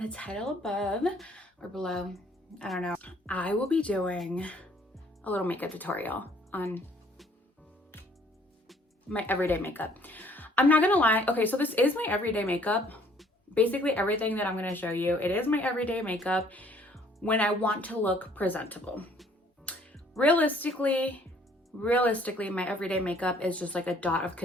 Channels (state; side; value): normal; both; correlation 0.60